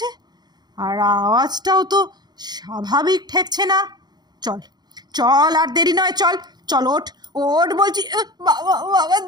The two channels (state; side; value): late; left; 0.20 ms